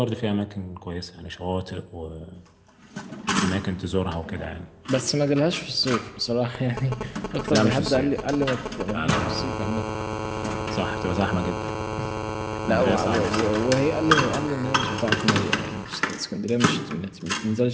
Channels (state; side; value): identical; both; correlation 1.00